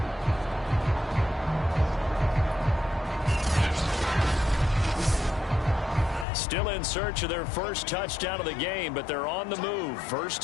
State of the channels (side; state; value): right; drops out; at 6.2 s